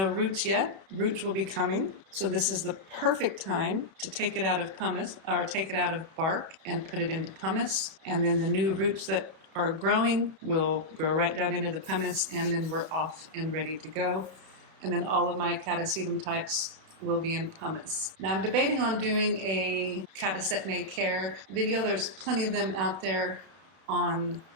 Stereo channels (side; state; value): left; late; 31 ms